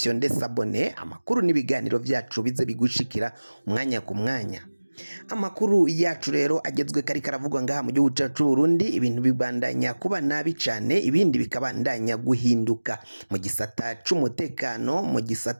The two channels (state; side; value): inverted; both; correlation -1.00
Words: sabone amakuru n'ibiganiro vyacu bize bigushikira umwanya ku mwanya. Amakuru yacu rero agezwe kari karavugwa ngaha mu gihugu cacu Burundi ibintu bibandanya kuba nabi cane ibindi bikabandanya guhinduka mu gisata c'umutekano mu